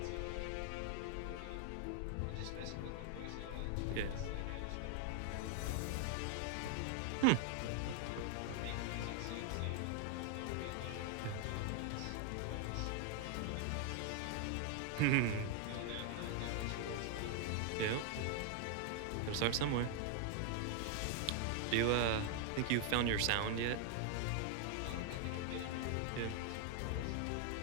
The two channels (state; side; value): different; both; correlation 0.00